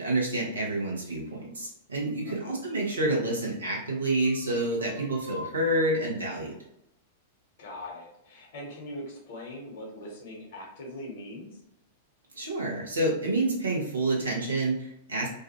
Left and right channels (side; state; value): both; inverted; correlation -0.41